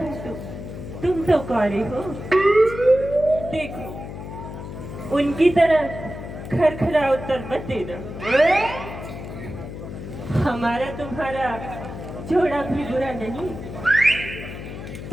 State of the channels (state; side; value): noise; left; hum, 10 dB below the sound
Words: तुम तो कौरे हो। देखो, उनकी तरह खरखरा उत्तर मत देना। हमारा तुम्हारा जोड़ा भी बुरा नहीं।